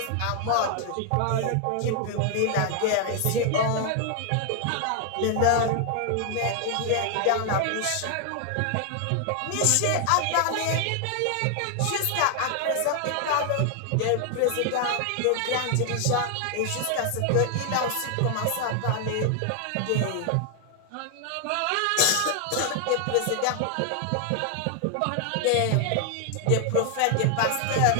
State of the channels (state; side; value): different; both; correlation 0.00